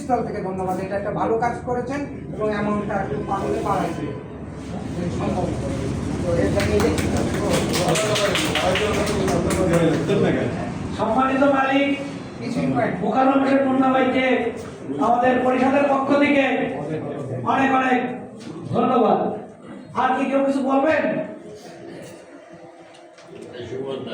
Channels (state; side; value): identical; both; correlation 1.00